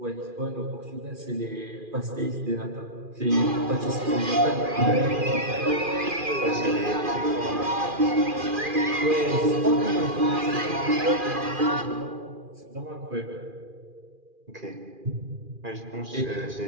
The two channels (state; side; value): late; left; 2.4 ms